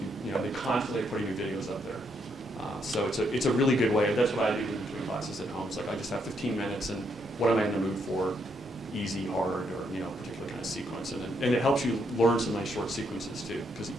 can, they constantly are putting new videos up there. So it's a really good way. That's what I do in between classes at home. It's like I just have 15 minutes, and what am I in the mood for? Easy, hard, or particular kind of sequence, and it helps you learn some nice short sequences too, because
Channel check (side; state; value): both; normal; correlation 0.75